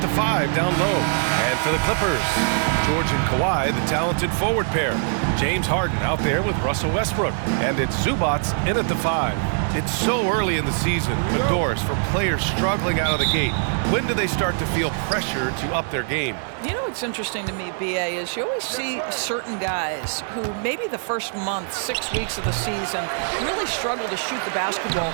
5 down low. And for the Clippers, George and Kawhi, the talented forward pair. James Harden out there with Russell Westbrook, and it's Zubats in at the 5. It's so early in the season, but Doris, for players struggling out of the gate, when do they start to feel pressure to up their game? You know what's interesting to me, BA, is you always see certain guys who maybe the first month, 6 weeks of the season, really struggle to shoot the basketball,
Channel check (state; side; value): silent; left; digital silence